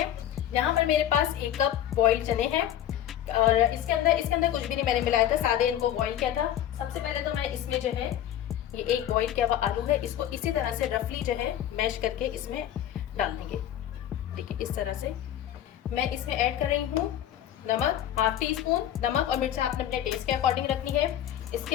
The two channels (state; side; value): quieter; right; 11.3 dB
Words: यहाँ पर मेरे पास 1 कप बॉइल्ड चने हैं और इसके अंदर कुछ भी नहीं मैंने मिलाया था, सादे इनको बॉईल किया था। सबसे पहले तो मैं इसमें जो है ये एक बॉईल किया हुआ आलू है, इसको इसी तरह से रफली जो है मैश करके इसमें डाल देंगे। देखिए इस तरह से मैं इसमें ऐड कर रही हूँ नमक, हाफ टी स्पून। नमक और मिर्च आपने अपने टेस्ट के अकॉर्डिंग रखनी है। इसके